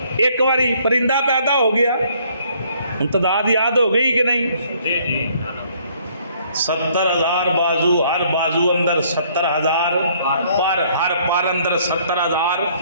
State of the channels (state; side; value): inverted; both; correlation -0.63